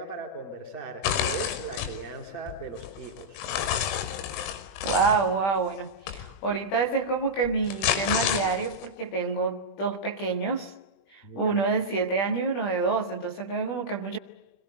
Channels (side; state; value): right; late; 21 ms